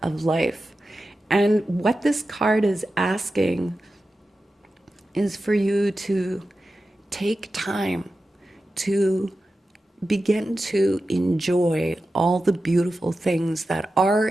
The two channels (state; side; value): normal; both; correlation 0.93